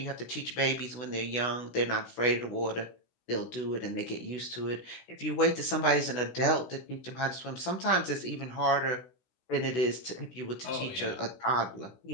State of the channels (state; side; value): late; right; 16 ms